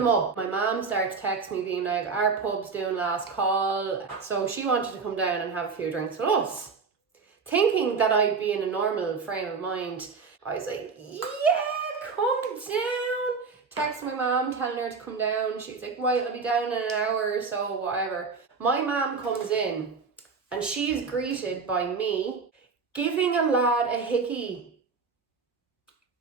mom started to text me being like, our pub's doing last call. So she wanted to come down and have a few drinks with us. Thinking that I'd be in a normal frame of mind, I was like, yeah, come down. Text my mom telling her to come down. She was like, right, I'll be down in an hour or so, whatever. My mom comes in and she is greeted by me giving a lad a hickey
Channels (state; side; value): quieter; left; 5.0 dB